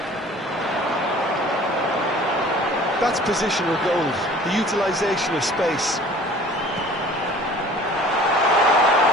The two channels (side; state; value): both; normal; correlation 0.48